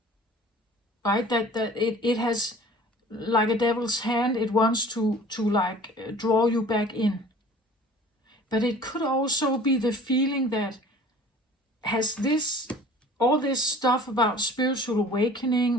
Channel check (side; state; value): both; normal; correlation 0.47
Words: Right? That it has, like a devil's hand, it wants to like draw you back in. But it could also be the feeling that has this, all this stuff about spiritual